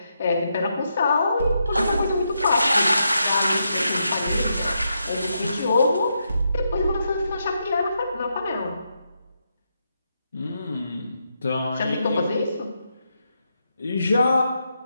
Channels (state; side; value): inverted; both; correlation -0.82